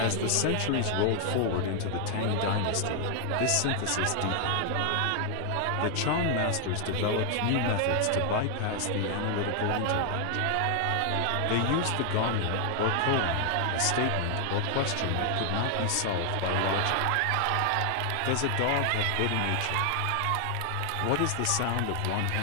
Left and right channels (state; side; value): different; both; correlation 0.00